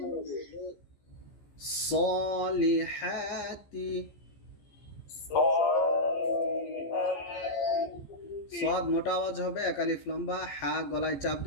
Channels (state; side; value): late; right; 14 ms